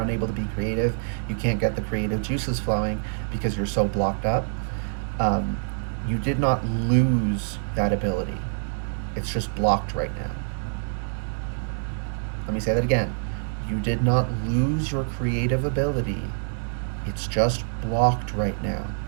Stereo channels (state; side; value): silent; left; digital silence